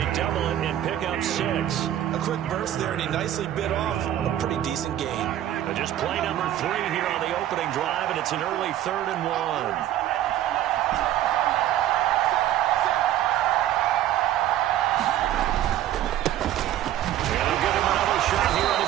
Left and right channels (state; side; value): quieter; left; 12.3 dB